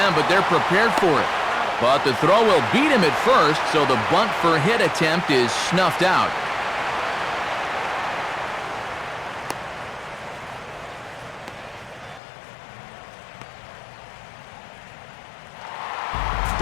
but they're prepared for it. But the throw will beat him at first, so the bunt for hit attempt is snuffed out.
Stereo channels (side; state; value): right; drops out; at 12.2 s